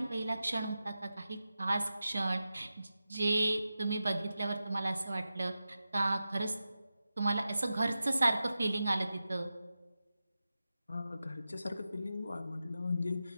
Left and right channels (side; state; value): both; inverted; correlation -0.92